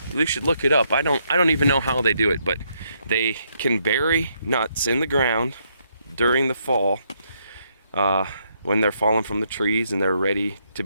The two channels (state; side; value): inverted; both; correlation -0.75